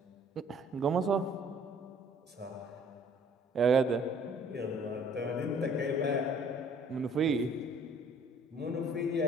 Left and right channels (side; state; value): both; normal; correlation 0.57